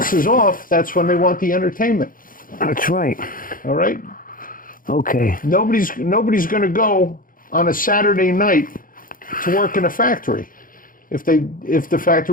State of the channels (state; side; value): late; right; 0.40 ms